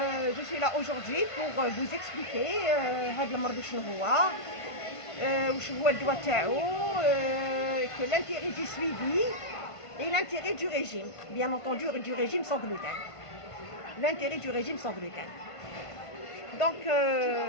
je suis là aujourd'hui pour vous expliquer هاد المرض شنو هو، وشنو هو الدواء تاعو، que l'intérêt du suivi et l'intérêt du régime, bien entendu du régime sans gluten. L'intérêt du régime sans gluten. Donc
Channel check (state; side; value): late; right; 1.5 ms